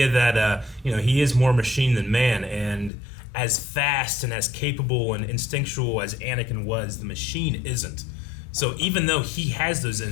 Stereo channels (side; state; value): right; drops out; at 2.9 s